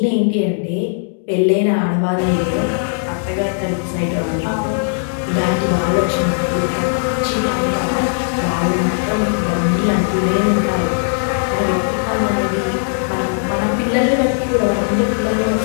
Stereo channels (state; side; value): silent; right; digital silence